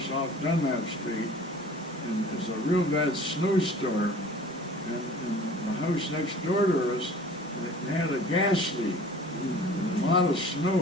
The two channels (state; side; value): normal; both; correlation 0.46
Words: off Dunlap Street, and there's a real bad snowstorm, and the house next door to us, they had a gas leak, and a lot of